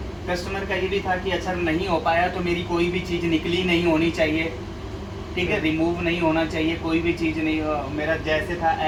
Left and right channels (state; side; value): identical; both; correlation 1.00